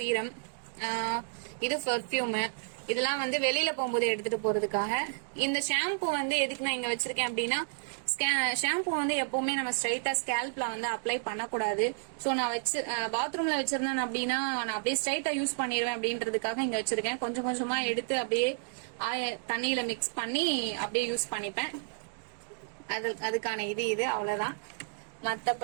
இது பெர்ஃப்யூம். இதெல்லாம் வந்து வெளியில போகும்போது எடுத்துட்டு போறதுக்காக. இந்த ஷாம்பு வந்து எதுக்கு நான் இங்க வச்சிருக்கேன் அப்படின்னா ஷாம்பு வந்து எப்பவுமே நம்ம ஸ்ட்ரைட்டா ஸ்கேல்ப்ல வந்து அப்ளை பண்ணக்கூடாது. ஸோ நான் பாத்ரூம்ல வச்சிருந்தேன் அப்படின்னா நான் அப்படியே ஸ்ட்ரைட்டா யூஸ் பண்ணிடுவேன் அப்படின்றதுக்காக இங்க வச்சிருக்கேன். கொஞ்சம் கொஞ்சமா எடுத்து அப்படியே தண்ணியில மிக்ஸ் பண்ணி அப்படியே யூஸ் பண்ணிப்பேன். அதுக்கான இது அவ்வளவுதான்.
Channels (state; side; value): silent; left; digital silence